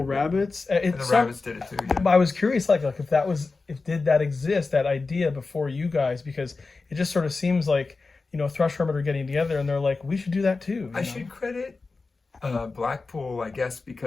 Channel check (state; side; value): quieter; right; 3.9 dB